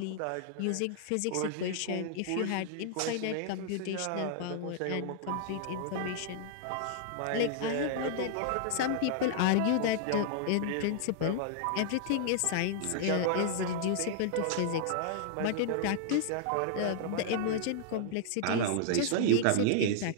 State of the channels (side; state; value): both; different; correlation -0.01